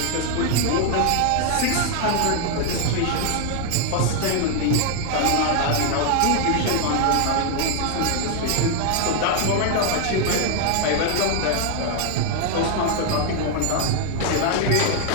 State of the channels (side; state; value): both; different; correlation 0.00